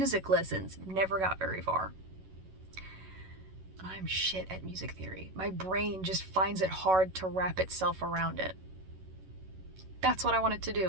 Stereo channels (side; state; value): left; late; 11 ms